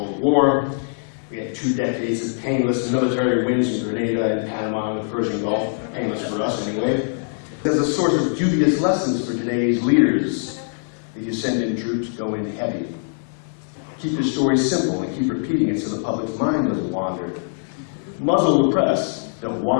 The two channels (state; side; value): silent; right; 61 dB below the other